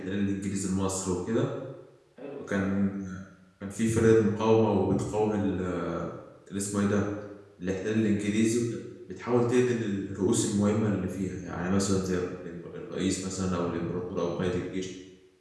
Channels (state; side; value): identical; both; correlation 1.00